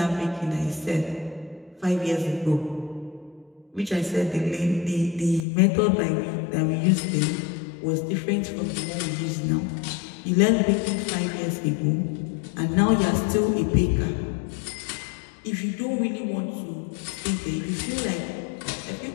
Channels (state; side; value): drops out; right; at 5.5 s